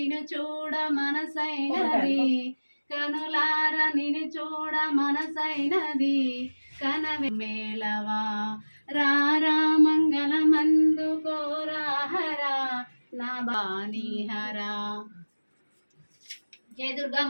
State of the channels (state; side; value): inverted; both; correlation -1.00